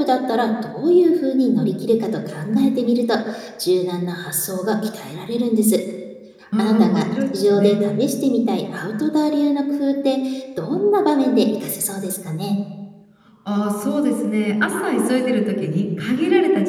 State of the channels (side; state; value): both; identical; correlation 1.00